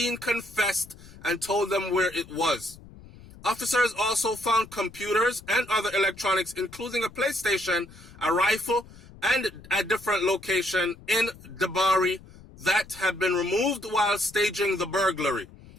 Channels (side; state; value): left; noise; rumble, 20 dB below the sound